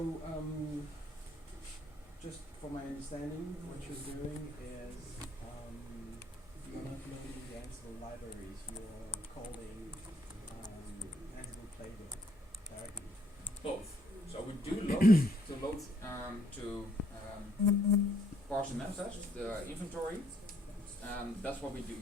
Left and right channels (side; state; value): both; normal; correlation 0.67